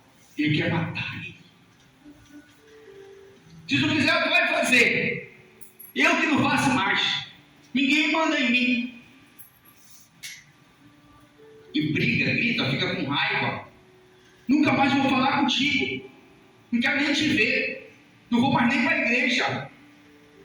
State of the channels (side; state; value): both; identical; correlation 1.00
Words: Ele quer matar ele. Se tu quiser, tu vai fazer. Eu que não faço mais. Ninguém manda em mim. E briga, grita, fica com raiva. Nunca mais vou falar contigo. Não quero nem te ver. Não vou mais nem para a igreja.